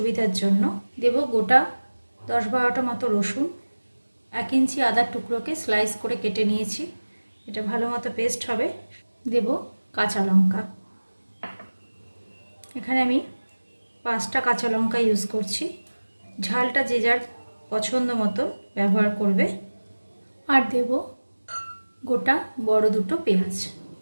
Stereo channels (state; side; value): inverted; both; correlation -1.00